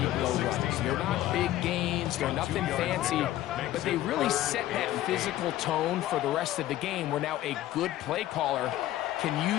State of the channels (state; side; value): quieter; right; 14.2 dB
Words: runs. They're not big gains. They're nothing fancy. But they really set that physical tone for the rest of the game where now a good play caller can